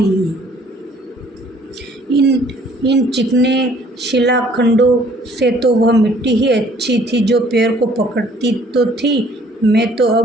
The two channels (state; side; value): normal; both; correlation 0.58